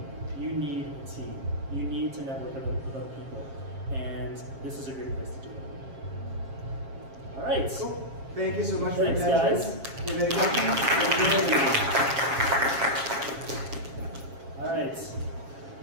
You need a team. You need to network with other people. And this is a great place to do it. All right. Cool. Thank you so much for your Thanks, attention. guys. If you have any questions, All right.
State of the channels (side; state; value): left; late; 7.4 ms